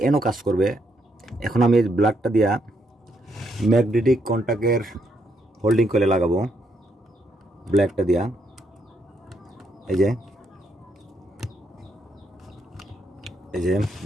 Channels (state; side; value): normal; both; correlation 0.76